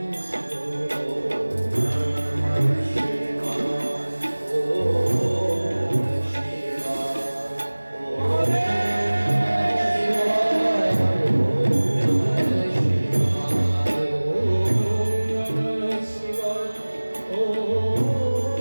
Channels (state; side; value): inverted; both; correlation -1.00